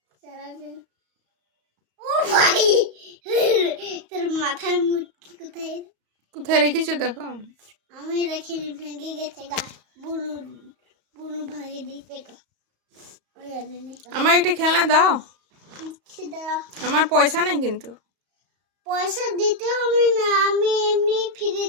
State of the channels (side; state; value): left; late; 34 ms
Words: চালাবে। ও ভাই, তোর মাথার মুটকি কোথায়? কোথায় রেখেছো দেখো। আমি রেখে ভেঙে গেছে গা। বুনু বুনু ভাঙে দিতে তো। আমার একটা খেলনা দাও। আমার পয়সা নাই কিন্তু। পয়সা দিতে হবে না, আমি এমনি